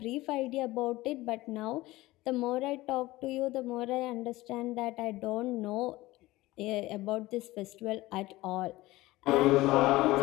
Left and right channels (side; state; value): right; quieter; 18.7 dB